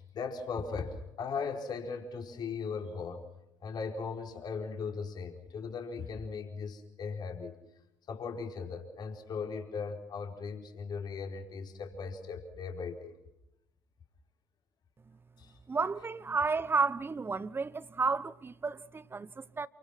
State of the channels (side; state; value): both; normal; correlation 0.67